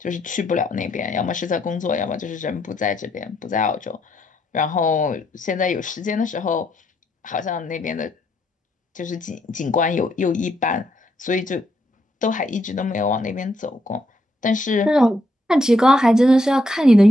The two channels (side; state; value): both; normal; correlation 0.76